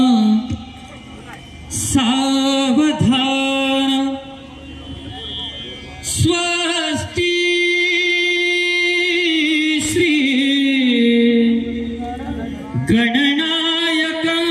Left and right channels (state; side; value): identical; both; correlation 1.00